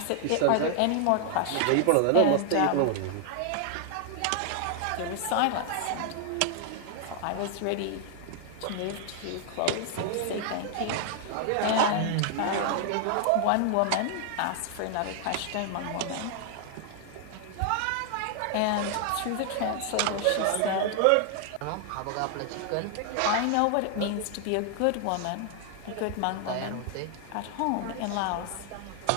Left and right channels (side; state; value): both; different; correlation 0.00